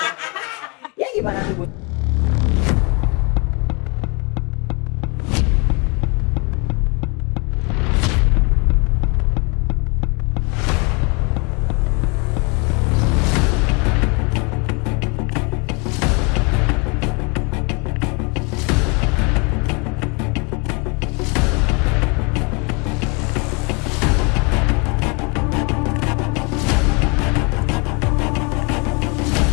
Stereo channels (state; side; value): quieter; right; 31.2 dB